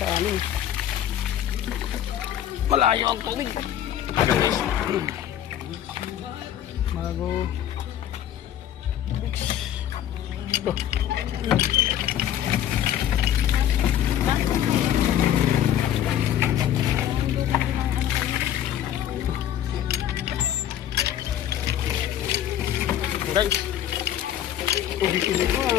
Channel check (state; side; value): quieter; right; 11.0 dB